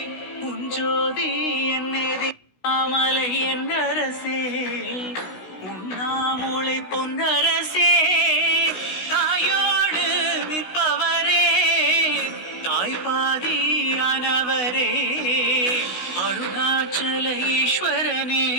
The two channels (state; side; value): late; right; 16 ms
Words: உஞ்சோதி என்னேதி மாமலை என்னரசே உண்ணாமூளை பொன்னரசே தாயோடு நிற்பவரே தாய்பாதியானவரே அருணாச்சல ஈஸ்வரனே